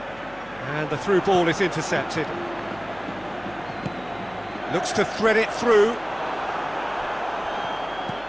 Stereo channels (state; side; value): noise; left; hum, 23 dB below the sound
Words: And the through ball is intercepted. Looks to thread it through.